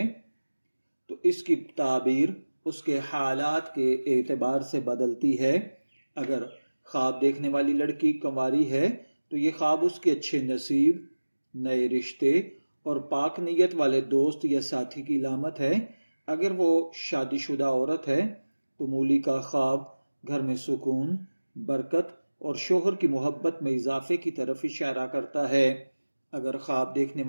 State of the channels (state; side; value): inverted; both; correlation -1.00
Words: تو اس کی تعبیر اس کے حالات کے اعتبار سے بدلتی ہے۔ اگر خواب دیکھنے والی لڑکی کنواری ہے تو یہ خواب اس کے اچھے نصیب، نئے رشتے اور پاک نیت والے دوست یا ساتھی کی علامت ہے۔ اگر وہ شادی شدہ عورت ہے تو مولی کا خواب گھر میں سکون، برکت اور شوہر کی محبت میں اضافے کی طرف اشارہ کرتا ہے۔ اگر خواب دیکھنے